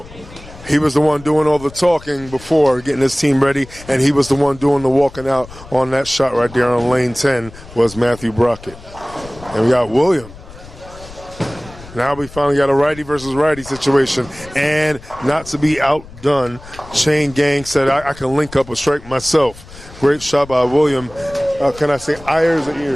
He was the one doing all the talking before, getting his team ready, and he was the one doing the walking out on that shot right there on lane 10 was Matthew Brockett. And we got William. Now we finally got a righty versus righty situation, and not to be outdone, Chain Gang said, I can link up a strike myself. Great shot by William. Can I say Ayers or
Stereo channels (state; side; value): noise; left; rumble, 18 dB below the sound